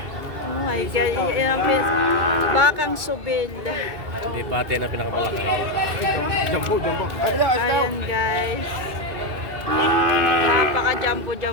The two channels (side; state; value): left; late; 2.2 ms